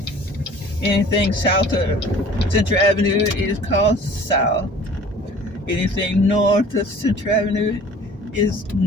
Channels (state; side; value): normal; both; correlation 0.48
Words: Anything south of Central Avenue is called south. Anything north of Central Avenue is